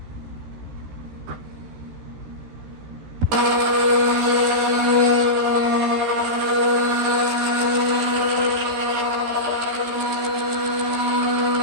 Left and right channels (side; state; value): left; late; 13 ms